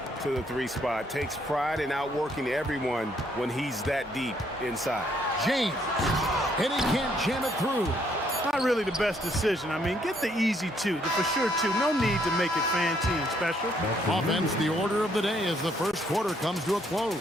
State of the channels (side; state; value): both; normal; correlation 0.69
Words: to the 3 spot. Takes pride in outworking everyone when he's that deep inside. James, and he can't jam it through. Not really the best decision. I mean, get the easy 2, the for sure 2. No need to make it fancy and special. Offense, the order of the day as the first quarter comes to a close.